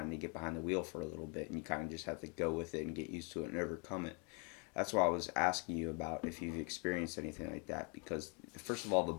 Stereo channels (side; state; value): right; quieter; 36.0 dB